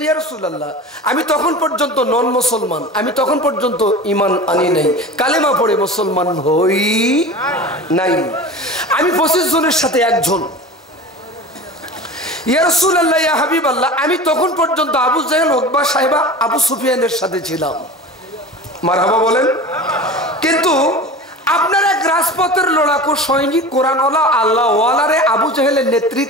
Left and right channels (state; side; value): normal; both; correlation 0.34